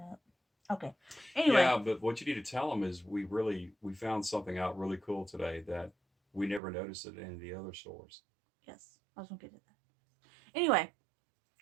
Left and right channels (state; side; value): drops out; left; at 6.6 s